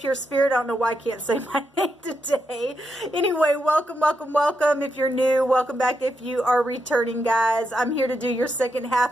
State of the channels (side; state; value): both; normal; correlation 0.83